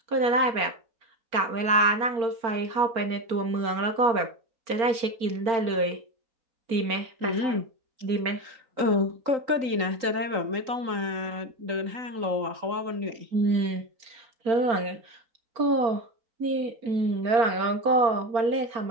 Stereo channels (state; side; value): late; left; 4.4 ms